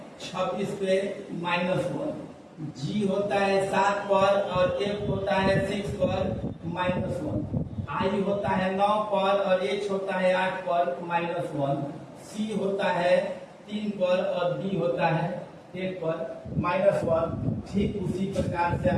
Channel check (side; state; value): both; identical; correlation 1.00